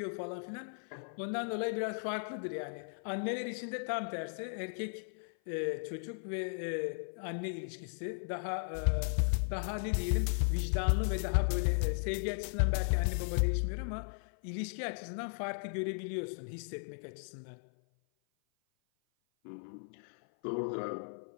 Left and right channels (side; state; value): right; silent; 54 dB below the other